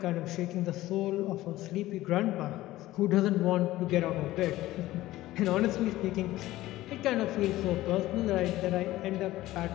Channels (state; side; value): quieter; right; 16.3 dB